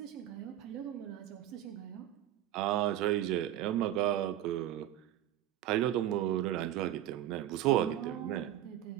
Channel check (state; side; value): quieter; left; 12.5 dB